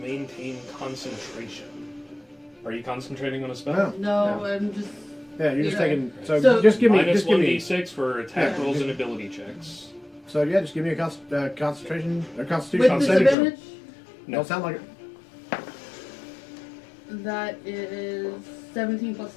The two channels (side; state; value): right; drops out; at 13.4 s